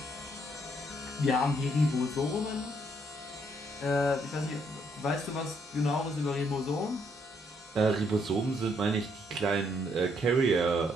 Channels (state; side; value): normal; both; correlation 0.71